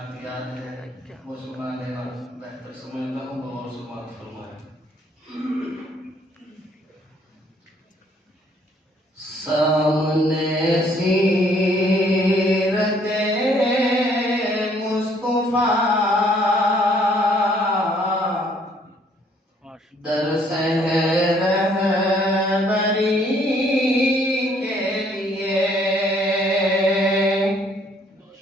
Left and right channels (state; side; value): normal; both; correlation 0.64